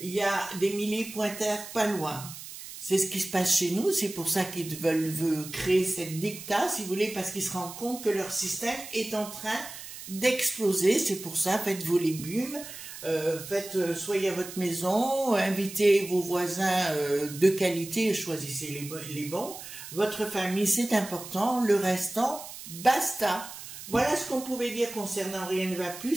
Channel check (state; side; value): noise; right; hiss, 12 dB below the sound